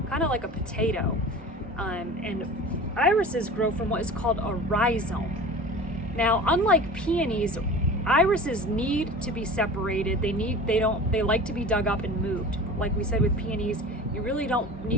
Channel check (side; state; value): both; normal; correlation 0.37